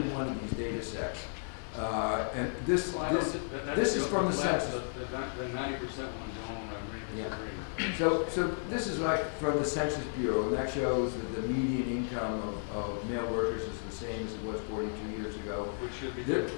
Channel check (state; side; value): silent; right; 55 dB below the other